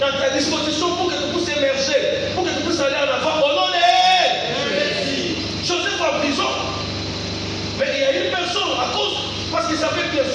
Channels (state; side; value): identical; both; correlation 1.00